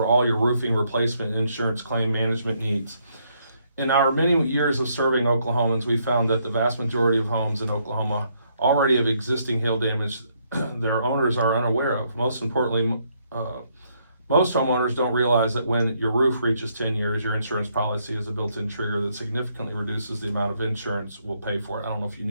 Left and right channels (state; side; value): inverted; both; correlation -0.73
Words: all your roofing replacement and insurance claim management needs. In our many years of serving Oklahomans, we found that the vast majority of homes in Oklahoma already have existing hail damage their owners are unaware of. Most importantly, most homeowners don't realize that when your roof reaches 10 years, your insurance policy is a built-in trigger that significantly reduces the amount of insurance we'll pay for it. I don't know if you